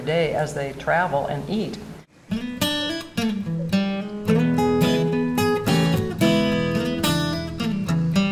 day as they travel and eat.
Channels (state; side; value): identical; both; correlation 1.00